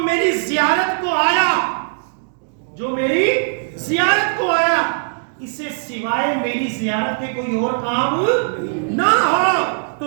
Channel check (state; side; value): silent; left; digital silence